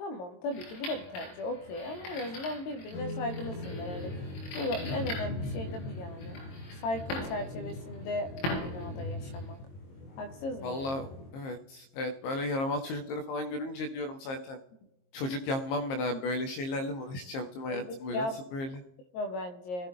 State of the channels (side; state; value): right; late; 22 ms